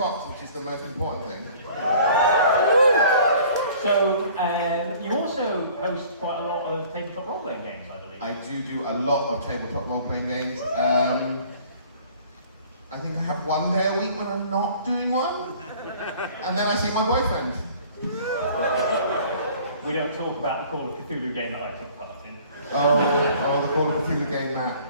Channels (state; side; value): inverted; both; correlation -0.51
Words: which is the most important thing. So, you also host quite a lot of tabletop role-playing games, I believe. I do a lot of tabletop role-playing games. I think I have one day a week when I'm not doing one, and then I see my boyfriend. We don't talk about the Call of Cthulhu game that I took part in. Oh, the Call of Cthulhu game, Matt.